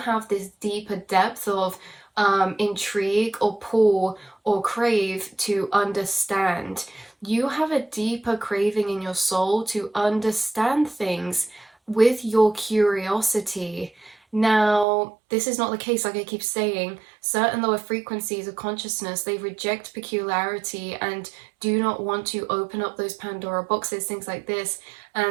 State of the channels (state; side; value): drops out; left; at 14.9 s